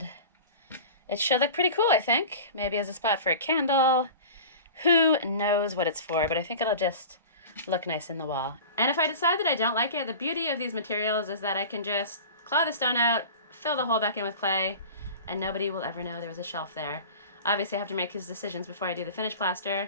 it should look pretty cool, I think. Maybe as a spot for a candle. Who knows what it's for, but I think it'll just look nice in the wall. And if I decide that I don't like it, the beauty of these materials is that I can just claw the stone out, fill the hole back in with clay, and nobody will ever know there was a shelf there. Obviously I have to make these decisions before I do the finished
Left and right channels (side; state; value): both; inverted; correlation -0.36